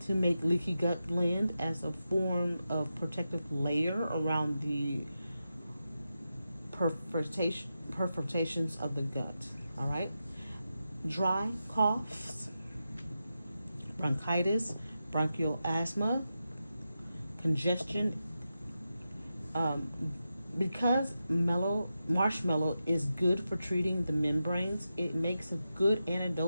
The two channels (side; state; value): both; inverted; correlation -0.90